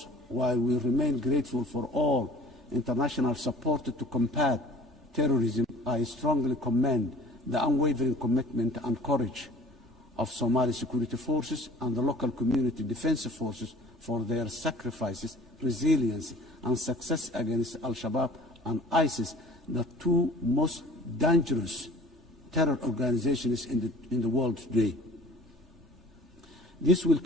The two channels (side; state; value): both; normal; correlation 0.48